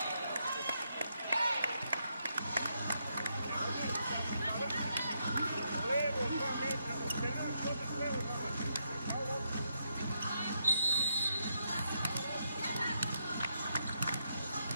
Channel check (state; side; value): inverted; both; correlation -0.79